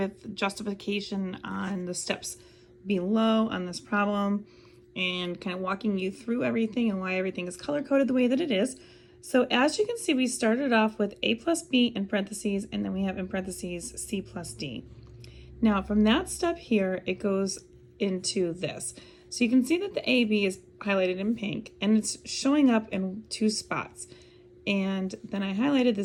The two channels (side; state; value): both; identical; correlation 1.00